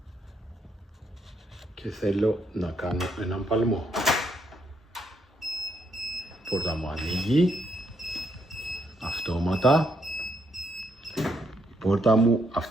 Και θέλω να κάνω έναν παλμό. Η πόρτα μου ανοίγει. Αυτόματα. Η πόρτα μου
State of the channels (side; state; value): both; normal; correlation 0.75